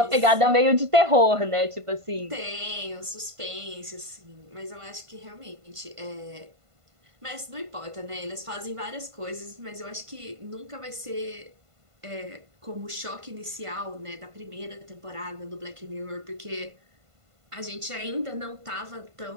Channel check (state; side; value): late; left; 1.5 ms